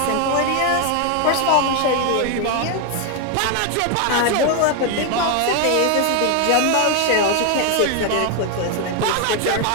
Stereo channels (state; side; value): different; both; correlation 0.01